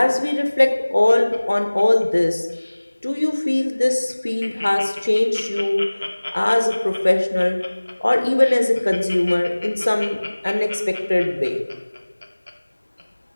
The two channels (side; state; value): both; inverted; correlation -1.00